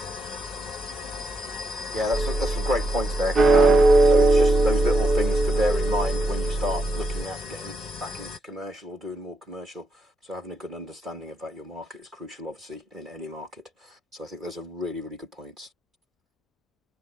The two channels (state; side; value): normal; both; correlation 0.82